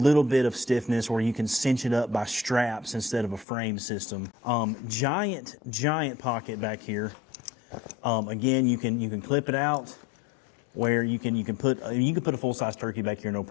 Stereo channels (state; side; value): drops out; right; at 3.5 s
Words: bit of stiffness where you can cinch it up by straps instead of a frame system. Giant pocket back here. Again, you can clip it out where you can put a full-size turkey back here, no